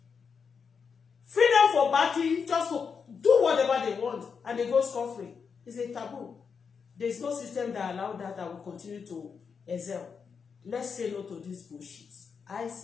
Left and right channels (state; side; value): quieter; right; 6.0 dB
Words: freedom for batting, just to do whatever they want, and they go scot-free. It's a taboo. There is no system that allows that will continue to excel. Let's say no to this bullshit. I